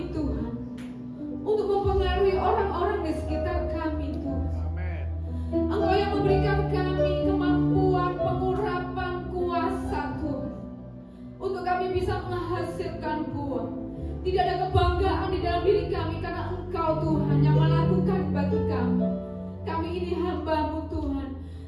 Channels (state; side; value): identical; both; correlation 1.00